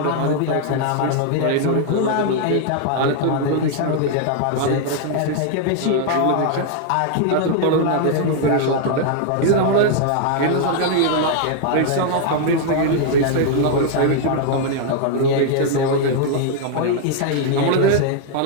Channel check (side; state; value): both; different; correlation 0.00